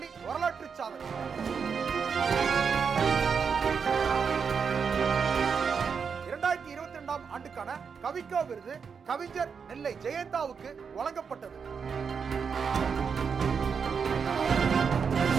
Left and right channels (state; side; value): quieter; left; 6.1 dB